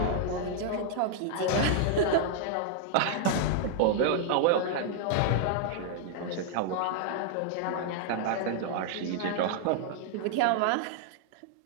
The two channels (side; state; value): both; different; correlation 0.00